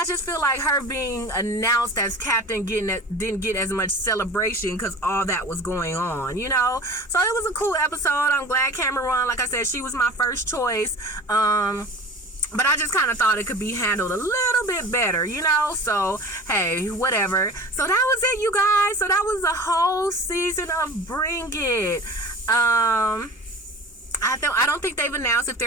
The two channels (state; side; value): normal; both; correlation 0.38